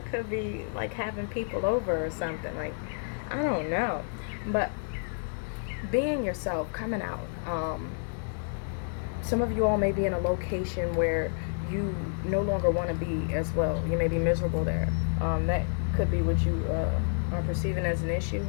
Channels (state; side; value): silent; right; 58 dB below the other